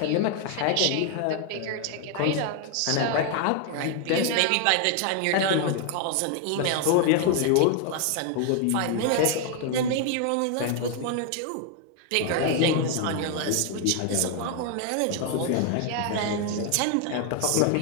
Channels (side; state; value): both; different; correlation 0.00